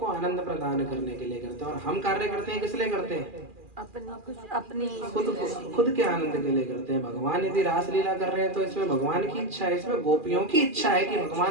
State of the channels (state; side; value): late; left; 2.4 ms